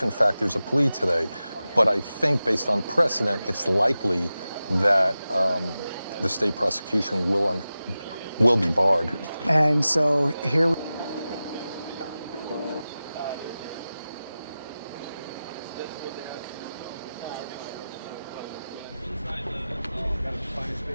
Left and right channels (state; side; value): inverted; both; correlation -0.95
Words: in fact there's a plea today. But I think based on precedent, it's likely that the state prosecution will be barred. And so here we